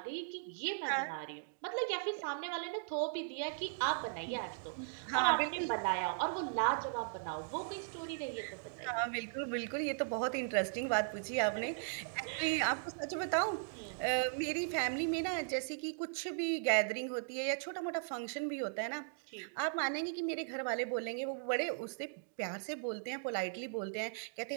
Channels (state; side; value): silent; left; digital silence